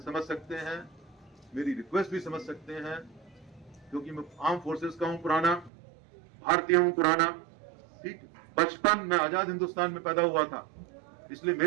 सकते हैं, मेरी रिक्वेस्ट भी समझ सकते हैं, क्योंकि मैं आर्म फोर्सेस का हूं पुराना, भारतीय हूं पुराना, ठीक। बचपन में आजाद हिंदुस्तान में पैदा हुआ था, इसलिए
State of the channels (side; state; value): left; drops out; at 5.7 s